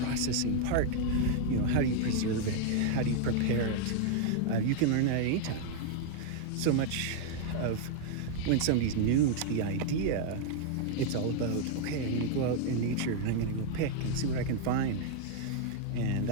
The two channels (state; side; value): different; both; correlation 0.00